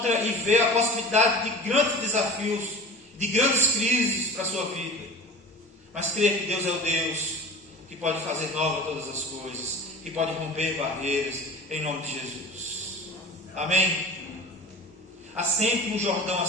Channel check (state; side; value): normal; both; correlation 0.37